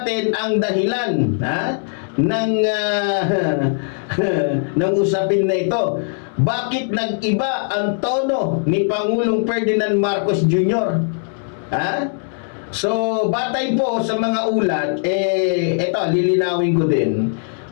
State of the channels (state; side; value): silent; right; 62 dB below the other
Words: ang dahilan ng usapin na ito. Bakit nag-iba ang tono ni Pangulong Ferdinand Marcos Jr.? So, batay po sa mga ulat, ito, lilinawin ko din.